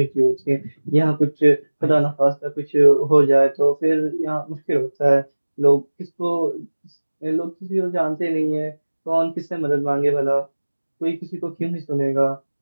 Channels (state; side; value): inverted; both; correlation -1.00